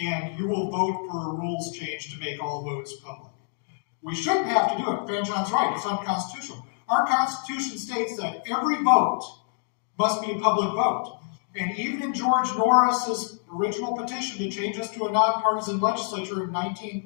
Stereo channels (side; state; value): right; silent; 60 dB below the other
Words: and you will vote for a rules change to make all votes public. We shouldn't have to do it. Fanchon's right. It's unconstitutional. Our Constitution states that every vote must be a public vote. And even in George Norris's original petition to change us to a nonpartisan legislature in